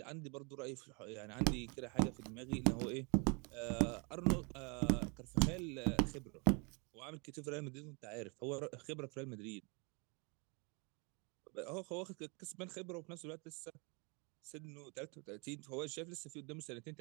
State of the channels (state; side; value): quieter; left; 32.0 dB